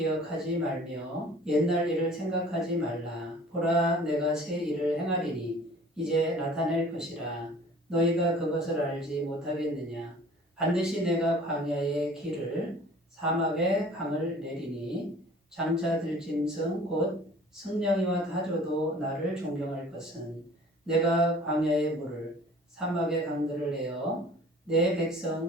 말며 옛날 일을 생각하지 말라. 보라, 내가 새 일을 행하리니 이제 나타낼 것이라. 너희가 그것을 알지 못하겠느냐? 반드시 내가 광야의 길을 사막에 강을 내리니 장차 들짐승 곧 승냥이와 타조도 나를 존경할 것은 내가 광야의 물을 사막의 강들을 내어 내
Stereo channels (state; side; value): normal; both; correlation 0.48